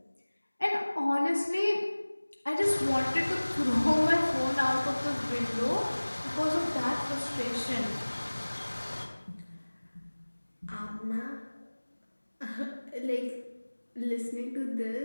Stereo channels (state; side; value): inverted; both; correlation -1.00